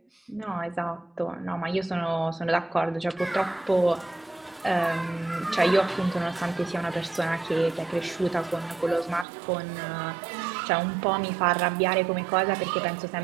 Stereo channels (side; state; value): left; drops out; at 9.2 s